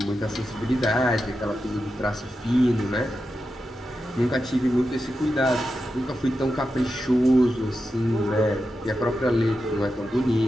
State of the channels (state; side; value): normal; both; correlation 0.89